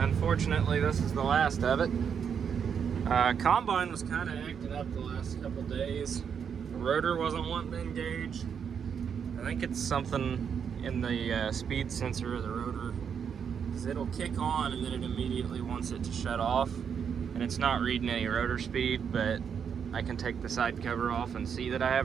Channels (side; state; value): left; quieter; 7.3 dB